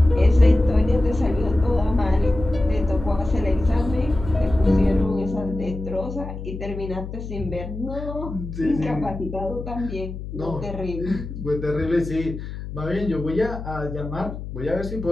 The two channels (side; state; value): left; noise; hum, 9 dB below the sound